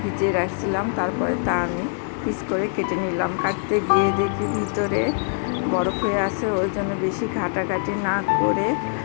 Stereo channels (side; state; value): right; silent; 63 dB below the other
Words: ভিজিয়ে রাখছিলাম, তারপরে তা আমি পিস করে কেটে নিলাম। কাটতে গিয়ে দেখি ভিতরে বরফ হয়ে আছে, ওই জন্য বেশি ঘাটাঘাটি না করে